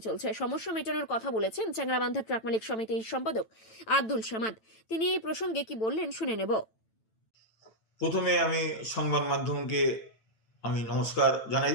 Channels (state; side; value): late; right; 9.0 ms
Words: চলছে। সমস্যা মেটানোর কথা বলেছেন চ্যাংড়াবান্ধা ট্রাক মালিক সমিতির সম্পাদক আব্দুল সামাদ। তিনি এই প্রসঙ্গে কি বললেন শুনে নেব। প্রথমে আমি সংবাদ মাধ্যমকে আমি নমস্কার জানাই,